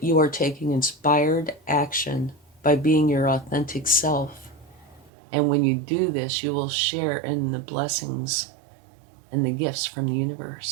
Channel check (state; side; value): drops out; left; at 5.1 s